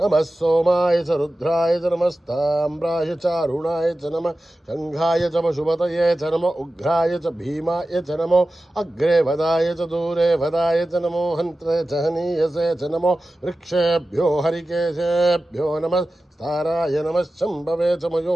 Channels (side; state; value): both; normal; correlation 0.95